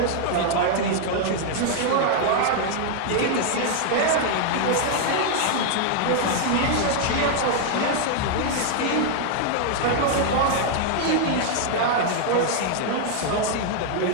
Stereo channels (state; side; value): different; both; correlation 0.00